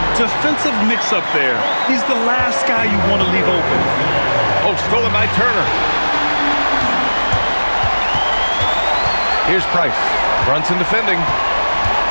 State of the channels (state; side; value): inverted; both; correlation -1.00